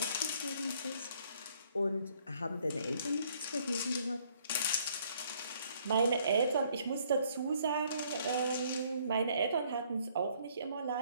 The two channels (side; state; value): both; inverted; correlation -0.64